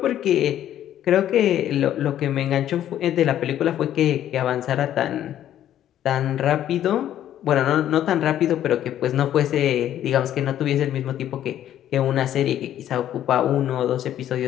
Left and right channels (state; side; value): quieter; right; 11.4 dB